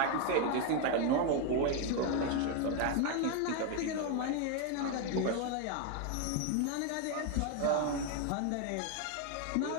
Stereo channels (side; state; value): both; different; correlation 0.01